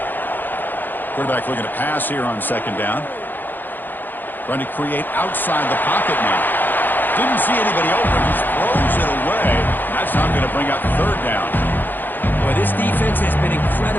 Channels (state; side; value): late; right; 0.088 ms